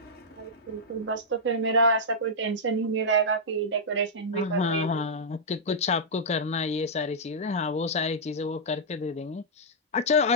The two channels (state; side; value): normal; both; correlation -0.09